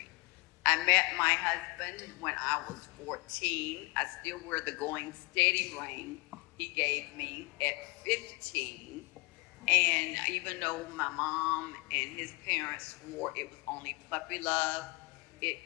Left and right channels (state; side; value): quieter; right; 25.8 dB